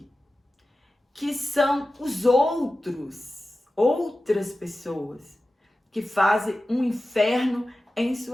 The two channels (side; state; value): both; normal; correlation 0.94